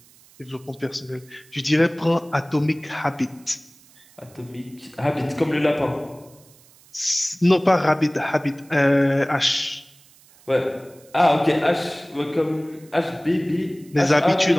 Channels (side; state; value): right; noise; hiss, 27 dB below the sound